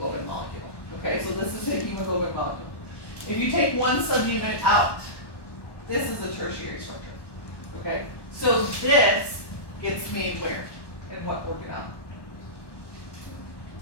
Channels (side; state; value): right; late; 1.1 ms